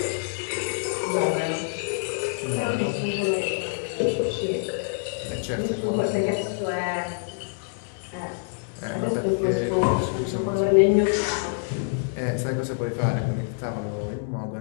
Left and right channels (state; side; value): silent; right; digital silence